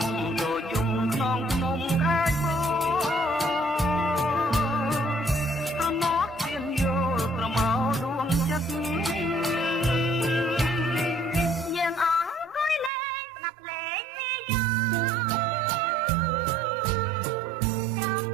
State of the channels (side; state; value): left; drops out; at 12.9 s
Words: ទៅជុំក្នុងភ្នំខាយបោប្រណោះជៀនយោប្រមោដួងចិត្តយើងអង្គុយលេងស្ដាប់លេងពីយោ